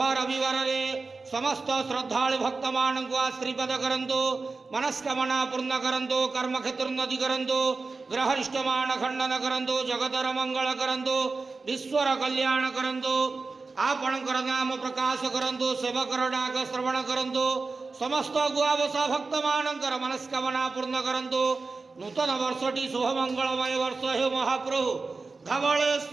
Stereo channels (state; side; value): quieter; left; 4.0 dB